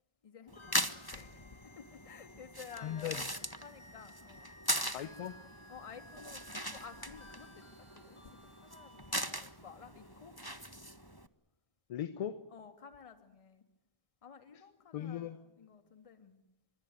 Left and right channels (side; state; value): right; late; 1.0 ms